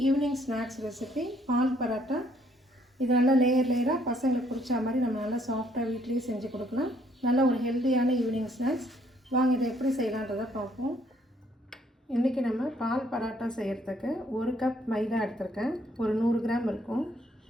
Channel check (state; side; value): normal; both; correlation 0.66